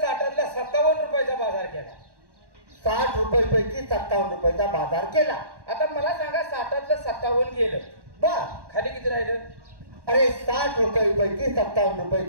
57 रुपयाचा बाजार केला. 60 रुपये पैकी 57 रुपयाचा बाजार केला. आता मला सांगा 60तलं 57 गेलं. बर. खाली किती राहिलं? अरे 60 रुपये पैकी 57 रुपये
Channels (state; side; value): late; left; 1.1 ms